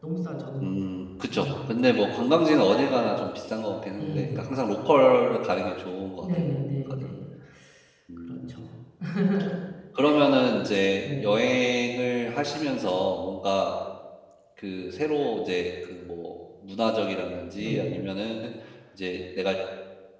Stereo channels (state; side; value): identical; both; correlation 1.00